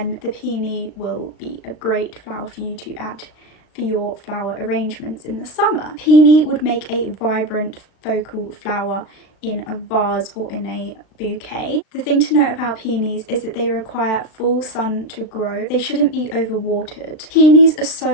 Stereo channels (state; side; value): late; right; 36 ms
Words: the Peony will be a great flower for you to add for your flower arrangements in the summer. Peony would make a vibrant focal flower in a vase or in a bouquet. The thing to note about peonies is that they require full sun to grow. They shouldn't be overwatered. Peonies are